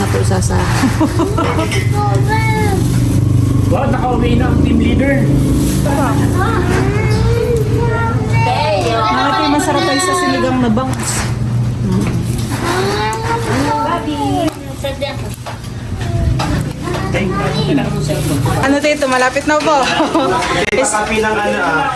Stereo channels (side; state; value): both; identical; correlation 1.00